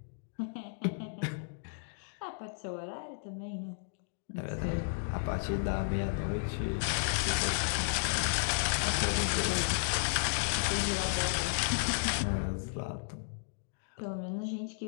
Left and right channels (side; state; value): right; silent; digital silence